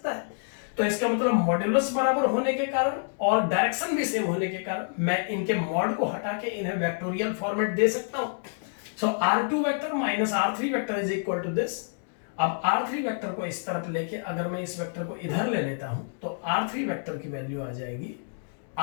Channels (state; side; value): silent; right; digital silence